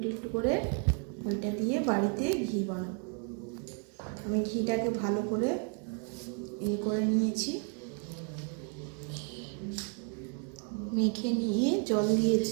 একটু করে ওইটা দিয়ে বাড়িতে ঘি বানাবো। আমি ঘিটাকে ভালো করে করে নিয়েছি, মেখে নিয়ে জল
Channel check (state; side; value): quieter; left; 39.6 dB